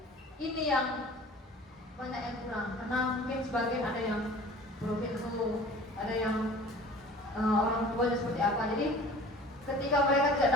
ini yang banyak yang kurang, karena mungkin sebagian ada yang broken home, ada yang orang tuanya seperti apa. Jadi ketika mereka tidak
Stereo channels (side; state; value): both; normal; correlation 0.45